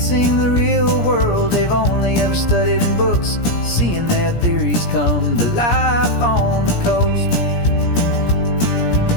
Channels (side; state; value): right; late; 17 ms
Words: the real world they've only ever studied in books, seeing their theories come to life on the coast.